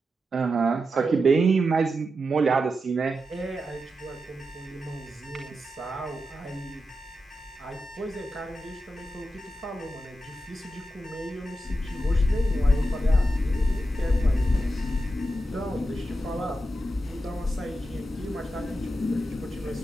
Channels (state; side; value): normal; both; correlation 0.89